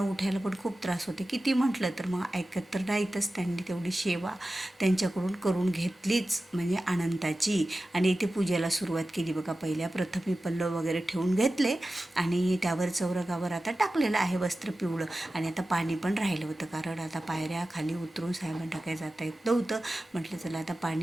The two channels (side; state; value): both; normal; correlation 0.94